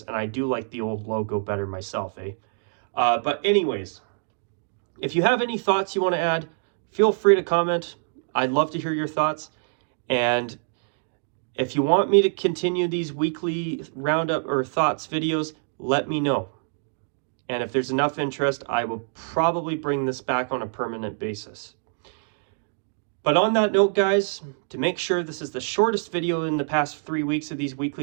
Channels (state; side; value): silent; left; digital silence